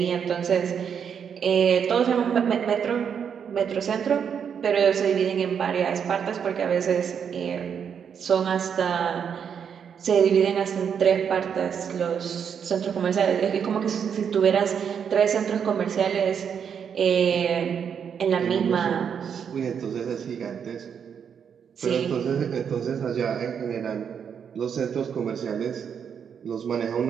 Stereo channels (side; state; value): left; quieter; 7.5 dB